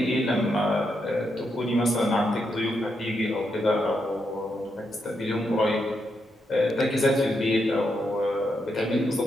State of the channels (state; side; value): normal; both; correlation 0.82